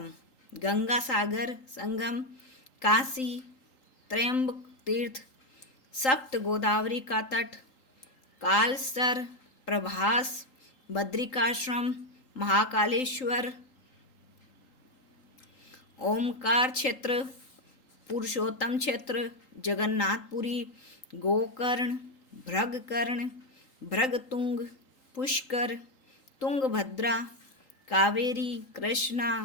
गंगा सागर संगम, काशी, त्रयंबक तीर्थ, सप्त गोदावरी का तट, कालसर, प्रभास, बद्रिकाश्रम, महाकालेश्वर, ओमकार क्षेत्र, पुरुषोत्तम क्षेत्र, जगन्नाथपुरी, गोकर्ण, भृगकर्ण, भृगतुंग, पुष्कर, तुंगभद्रा, कावेरी, कृष्णा,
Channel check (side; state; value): right; late; 3.8 ms